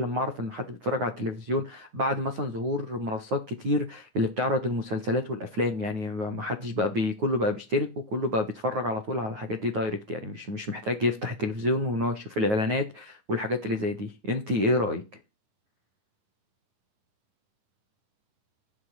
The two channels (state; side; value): late; left; 9.4 ms